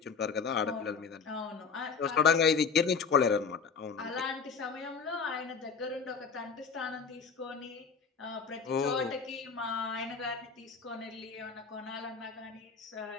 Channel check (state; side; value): quieter; right; 5.6 dB